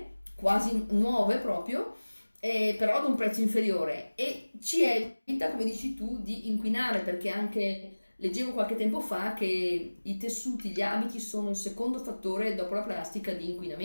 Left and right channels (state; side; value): inverted; both; correlation -1.00